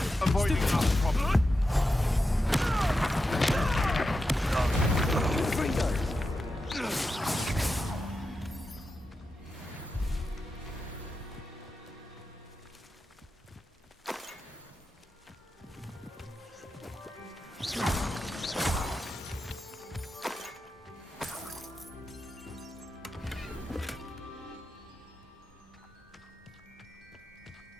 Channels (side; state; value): both; normal; correlation 0.89